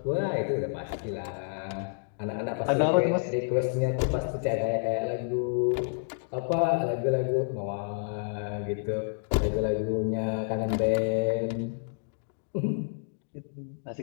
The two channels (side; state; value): right; silent; digital silence